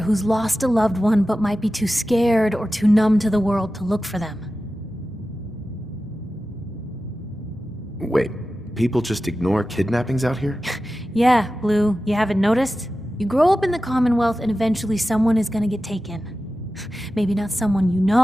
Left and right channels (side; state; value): both; normal; correlation 0.94